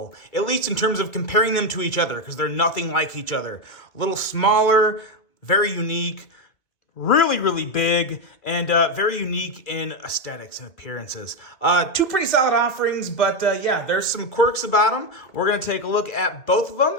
at least in terms of comparing them to each other, because they're nothing like each other. A little smaller, very unique, really big, and very unique in aesthetics and appearances. Two pretty solid offerings, but yeah, there's some quirks about them. We're going to take a look at both of them,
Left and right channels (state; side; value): late; right; 2.2 ms